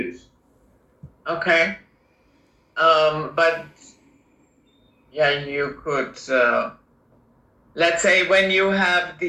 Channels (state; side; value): identical; both; correlation 1.00